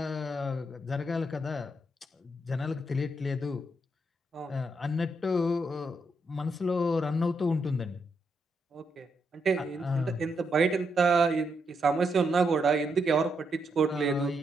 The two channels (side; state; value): both; normal; correlation 0.80